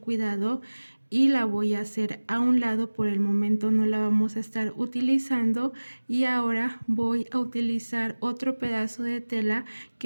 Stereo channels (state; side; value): inverted; both; correlation -1.00